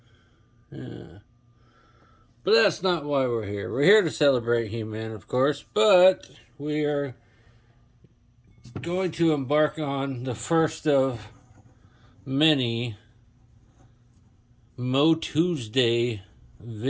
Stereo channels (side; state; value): both; identical; correlation 1.00